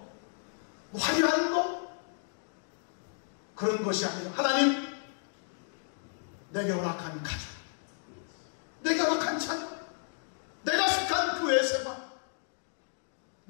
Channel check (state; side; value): silent; right; digital silence